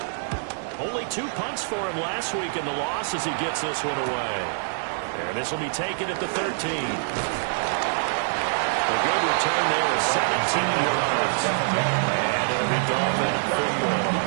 Only 2 punts for him last week in the loss as he gets this one away. And this will be taken at the 13. A good return there of 17 yards. And it'll be Dolphin football.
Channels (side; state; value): left; silent; digital silence